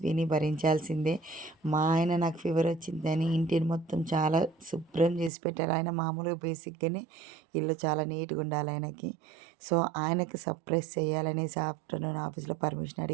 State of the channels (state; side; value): drops out; left; at 5.3 s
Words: విని భరించాల్సిందే. మా ఆయన నాకు ఫీవర్ వచ్చిందని ఇంటిని మొత్తం చాలా శుభ్రం చేసి పెట్టారు. ఆయన మామూలుగా బేసిక్గానే ఇల్లు చాలా నీట్గా ఉండాలి ఆయనకి. సో ఆయనకి సర్ప్రైజ్ చేయాలనేసి ఆఫ్టర్నూన్ ఆఫీస్లో పర్మిషన్